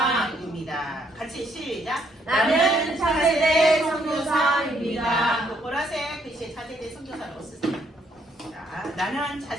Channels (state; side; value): normal; both; correlation 0.70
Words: 같이 시작. 나는 차세대 선교사입니다. 보라색 글씨에 차세대 선교사라고 쓰세요. 자, 나는